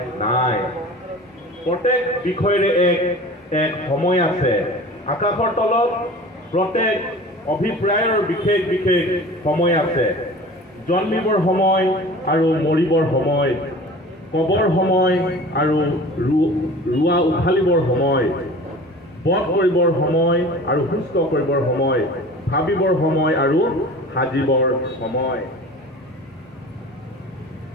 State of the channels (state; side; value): normal; both; correlation 0.40